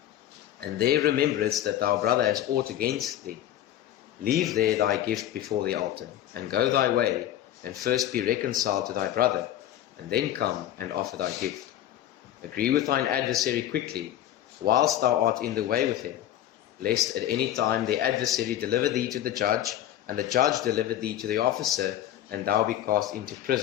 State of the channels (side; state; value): right; quieter; 12.2 dB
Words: and there rememberest that thy brother has aught against thee, leave there thy gift before the altar, and go thy way, and first be reconciled to thy brother, and then come and offer thy gift. Agree with thine adversary quickly, whilst thou art in the way with him, lest at any time the adversary deliver thee to the judge, and the judge deliver thee to the officer, and thou be cast into